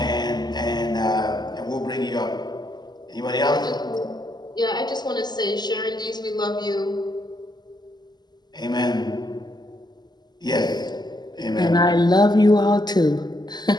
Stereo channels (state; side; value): late; right; 0.21 ms